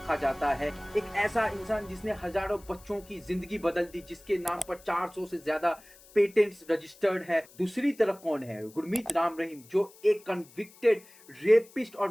जाता है। एक ऐसा इंसान जिसने हजारों बच्चों की जिंदगी बदल दी, जिसके नाम पर 400 से ज्यादा पेटेंट्स रजिस्टर्ड है। दूसरी तरफ कौन है? गुरमीत राम रहीम, जो एक कन्विक्टेड रेपिस्ट और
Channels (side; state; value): left; noise; hiss, 24 dB below the sound